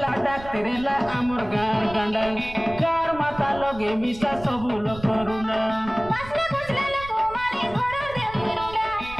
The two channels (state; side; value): noise; right; rumble, 15 dB below the sound